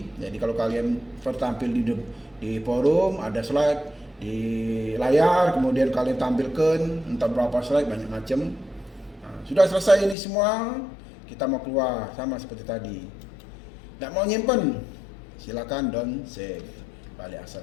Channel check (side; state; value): right; drops out; at 10.2 s